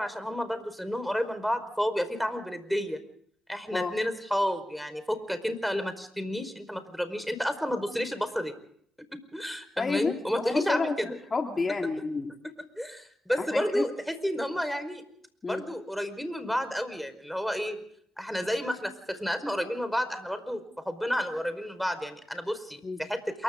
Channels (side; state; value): both; normal; correlation 0.94